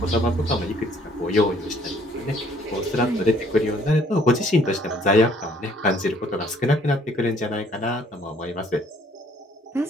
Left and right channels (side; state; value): both; normal; correlation 0.61